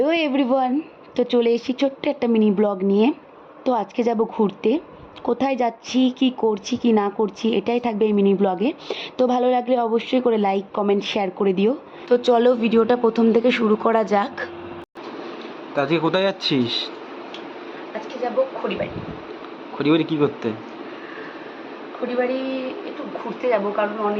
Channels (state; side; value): identical; both; correlation 1.00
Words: everyone, তো চলে এসেছি ছোট্ট একটা মিনি ব্লগ নিয়ে। তো আজকে যাব ঘুরতে। কোথায় যাচ্ছি, কি করছি, কি না করছি, এটাই থাকবে এই মিনি ব্লগে। তো ভালো লাগলে অবশ্যই করে লাইক, কমেন্ট, শেয়ার করে দিও। তো চলো ভিডিওটা প্রথম থেকে শুরু করা যাক। তা আজকে কোথায় যাচ্ছিস? আজকে যাব খড়িবাড়ি। খড়িবাড়ি কি করতে? খড়িবাড়ি একটু ঘুরতে যাব, কারণ